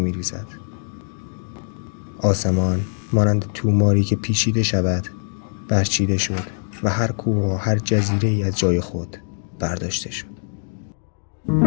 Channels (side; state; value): right; silent; digital silence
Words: آسمان مانند توماری که پیچیده شود برچیده شد و هر کوه و هر جزیره‌ای از جای خود برداشته شد.